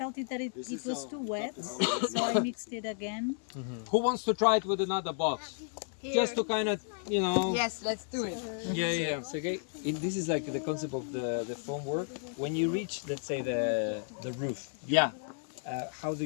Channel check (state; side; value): silent; right; 56 dB below the other